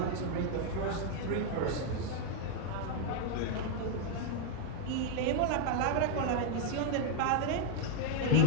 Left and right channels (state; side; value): different; both; correlation 0.00